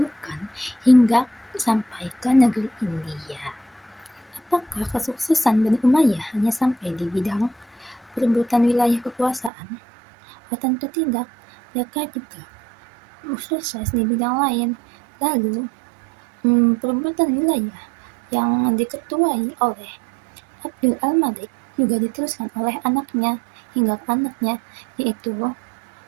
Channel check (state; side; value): drops out; left; at 9.5 s